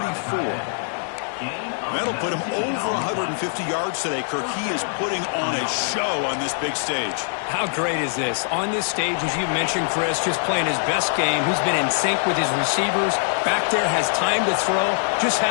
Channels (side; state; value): right; silent; digital silence